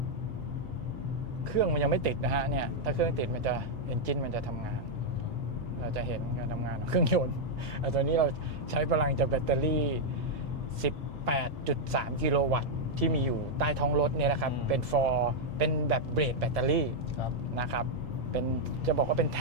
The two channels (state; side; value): normal; both; correlation -0.02